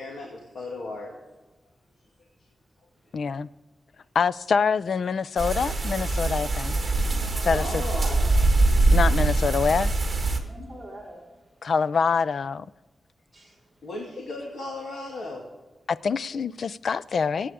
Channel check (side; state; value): both; normal; correlation 0.85